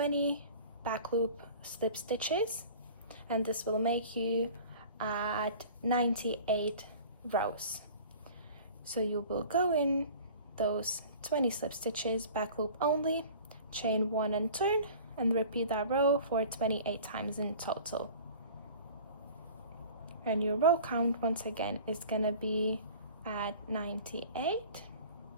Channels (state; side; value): inverted; both; correlation -0.44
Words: back loop slip stitches, and this will make you at 98 rows. So you will go in those 20 slip stitches, back loop only, chain 1 and turn, and repeat that row for 28 times in total. And your row count once again is gonna be at 98.